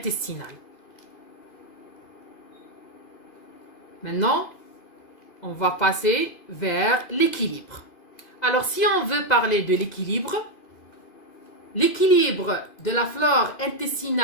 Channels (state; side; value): late; right; 2.0 ms